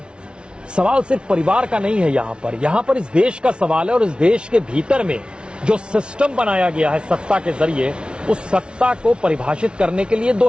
सवाल सिर्फ परिवार का नहीं है, यहाँ पर इस देश का सवाल है और इस देश के भीतर में जो सिस्टम बनाया गया है सत्ता के जरिए, उस सत्ता को परिभाषित करने के लिए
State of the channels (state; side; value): late; left; 0.057 ms